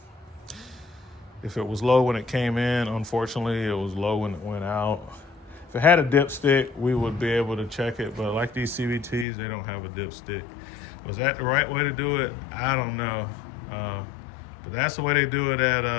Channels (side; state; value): right; drops out; at 9.2 s